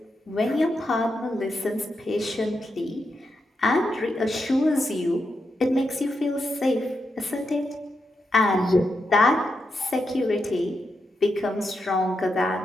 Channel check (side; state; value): both; normal; correlation 0.85